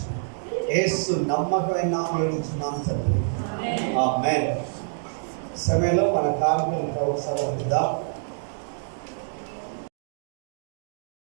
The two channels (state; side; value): silent; left; digital silence